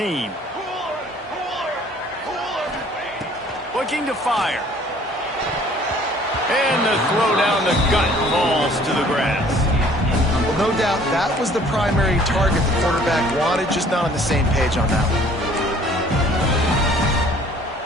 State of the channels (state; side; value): normal; both; correlation 0.55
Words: Looking to fire. And the throw down the gut falls to the grass. Well, no doubt that was the primary target the quarterback wanted, just not on the same page on that one.